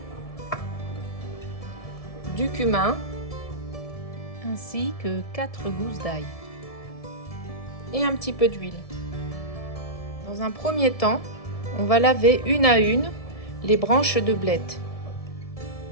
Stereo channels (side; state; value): right; late; 1.7 ms